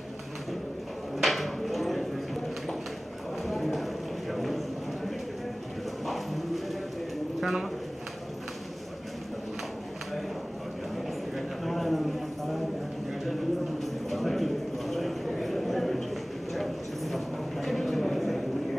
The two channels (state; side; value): normal; both; correlation 0.98